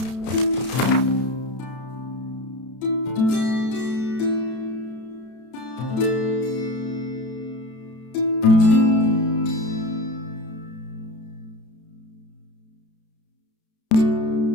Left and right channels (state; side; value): late; right; 32 ms